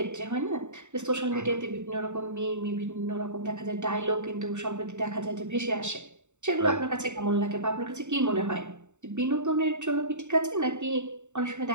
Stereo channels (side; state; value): left; late; 0.84 ms